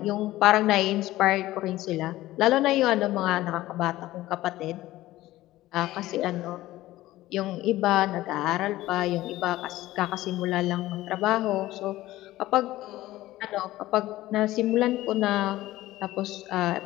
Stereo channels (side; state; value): right; quieter; 16.3 dB